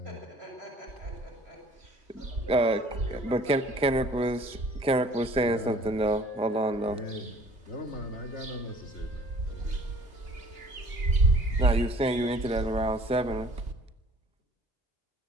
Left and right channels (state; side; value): normal; both; correlation 0.53